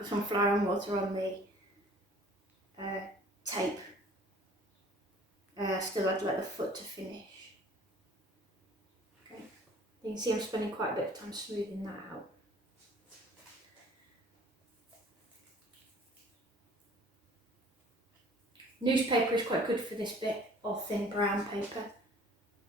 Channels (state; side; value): normal; both; correlation 0.51